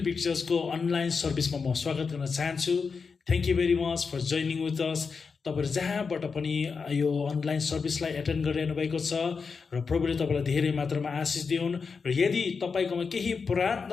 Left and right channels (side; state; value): right; quieter; 5.2 dB